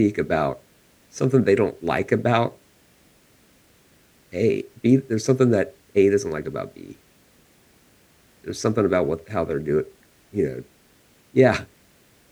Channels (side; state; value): both; identical; correlation 1.00